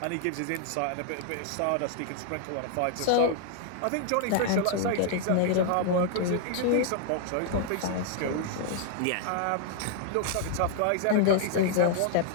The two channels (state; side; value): different; both; correlation 0.00